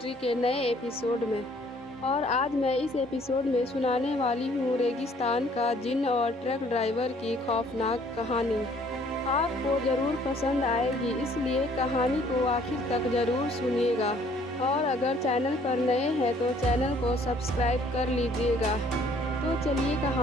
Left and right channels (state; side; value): normal; both; correlation 0.60